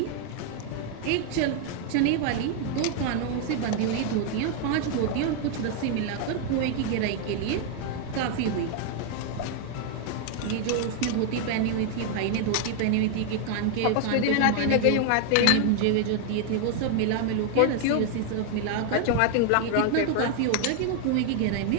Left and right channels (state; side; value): different; both; correlation 0.00